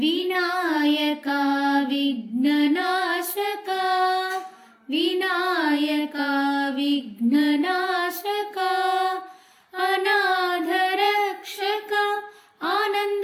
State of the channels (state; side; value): identical; both; correlation 1.00